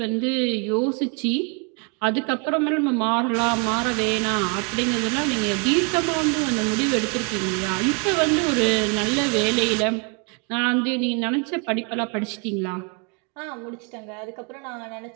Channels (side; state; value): left; quieter; 35.8 dB